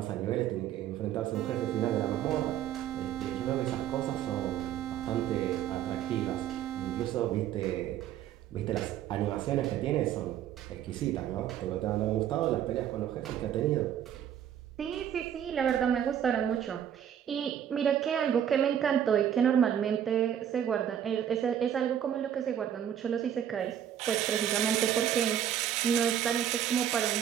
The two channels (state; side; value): quieter; left; 9.9 dB